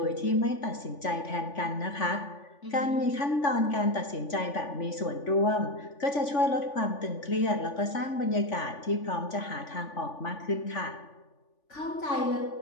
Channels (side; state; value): right; late; 3.5 ms